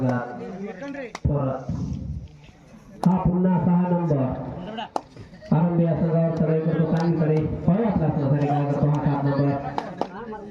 परत हा पुन्हा 6 नंबर आरंभी या संघावर चढाई करतो चांगली चढाई पाहूया आपल्या संघासाठी काय करतो हा 7 नंबर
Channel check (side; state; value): both; identical; correlation 1.00